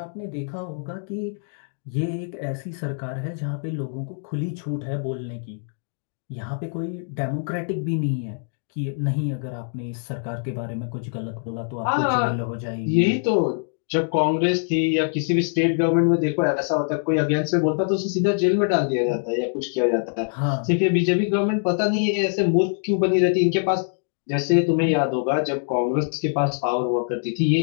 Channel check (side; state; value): right; silent; digital silence